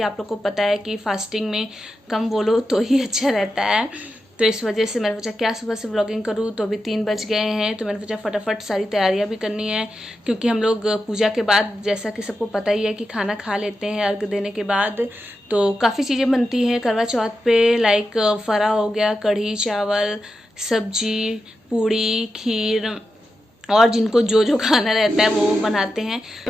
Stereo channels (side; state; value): both; normal; correlation 0.89